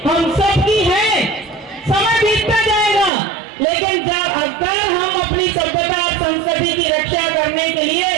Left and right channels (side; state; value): left; drops out; at 3.1 s